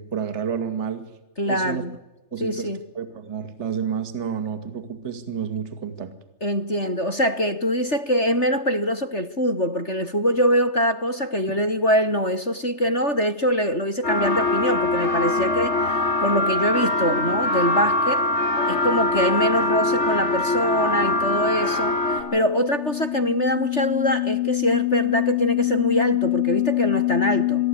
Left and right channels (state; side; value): late; right; 3.3 ms